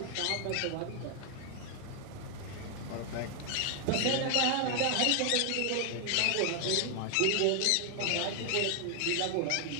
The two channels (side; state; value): both; different; correlation 0.00